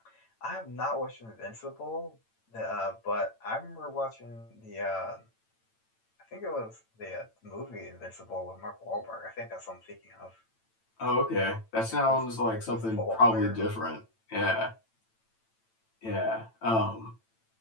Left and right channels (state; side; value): late; right; 8.9 ms